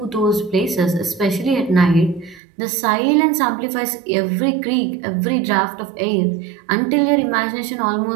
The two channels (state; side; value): drops out; left; at 2.4 s